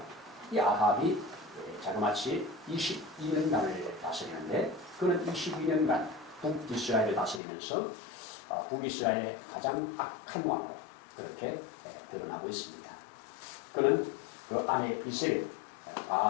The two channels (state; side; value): drops out; right; at 7.4 s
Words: 이 아합이 자그마치 22년간을 다스리는데 그는 22년간 북이스라엘을 다스리면서 북이스라엘의 가장 악한 왕으로 그렇게 드러나고 있습니다. 그는 그 아내 이세벨,